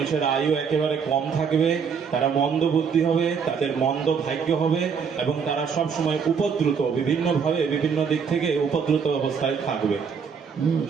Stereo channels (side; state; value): left; quieter; 6.4 dB